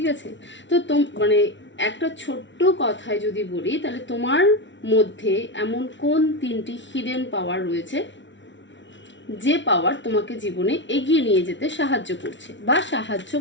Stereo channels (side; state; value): right; late; 0.54 ms